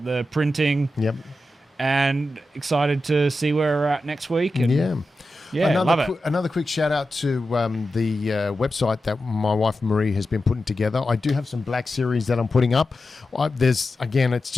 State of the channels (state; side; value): normal; both; correlation 0.91